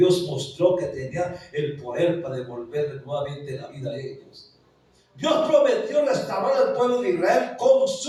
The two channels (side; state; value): both; identical; correlation 1.00